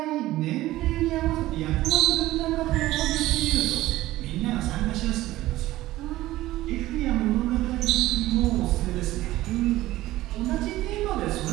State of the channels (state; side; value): quieter; left; 16.4 dB